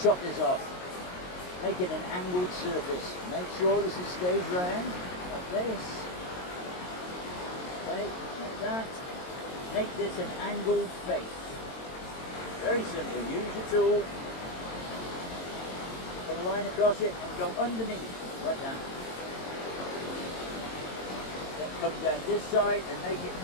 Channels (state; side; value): late; right; 22 ms